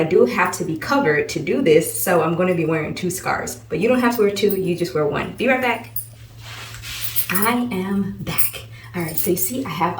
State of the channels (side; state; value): both; identical; correlation 1.00